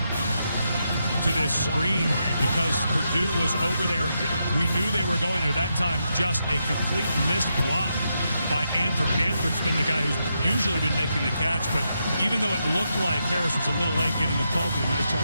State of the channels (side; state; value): both; inverted; correlation -0.83